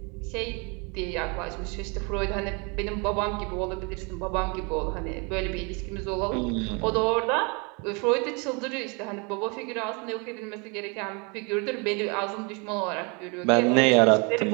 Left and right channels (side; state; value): left; quieter; 32.0 dB